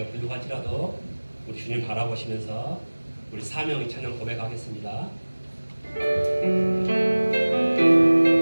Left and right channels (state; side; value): inverted; both; correlation -1.00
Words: 부족할지라도 우리 주님 바라보시면서 우리 사명의 찬양 고백하겠습니다.